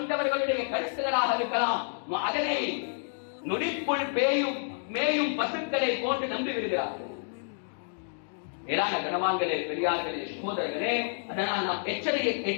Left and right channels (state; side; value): silent; right; digital silence